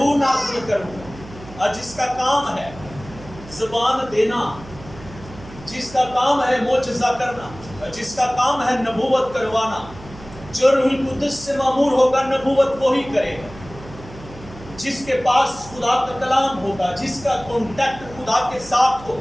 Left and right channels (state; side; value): noise; right; hum, 17 dB below the sound